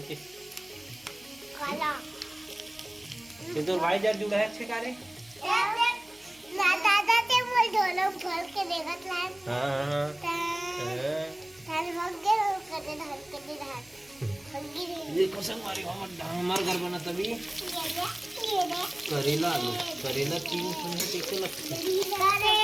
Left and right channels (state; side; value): noise; right; hum, 30 dB below the sound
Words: के काला ये तो भाई जर जुड़ा है अच्छे कारे ना दादा ते मोल दोनों खोल के देखत लान हां तार भाग गए कदे धर के धर ये कसम मारी हमार घर बना तभी ये दे करेला आलू करेला तीन सुने टेके लगते